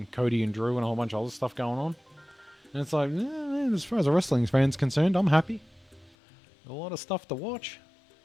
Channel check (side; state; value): right; drops out; at 6.2 s